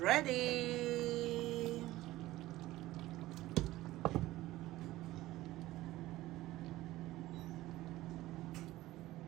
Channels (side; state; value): left; quieter; 16.7 dB